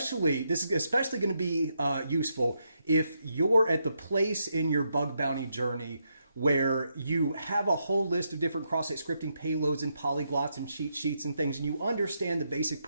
especially going to be useful if you're at the place in your bug bounty journey where you have a whole list of different cross-site scripting payloads and polyglots and cheat sheets and things, and you understand the basic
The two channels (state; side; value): inverted; both; correlation -0.80